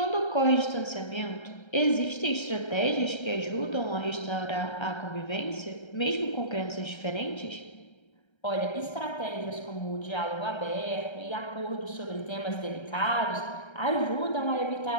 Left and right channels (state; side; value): late; right; 1.3 ms